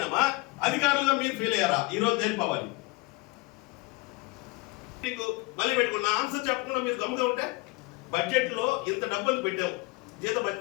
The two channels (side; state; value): right; quieter; 23.7 dB